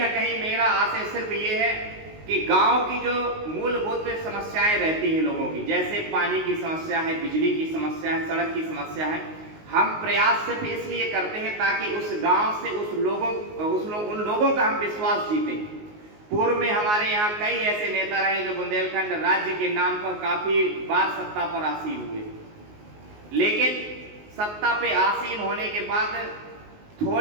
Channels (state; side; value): late; left; 19 ms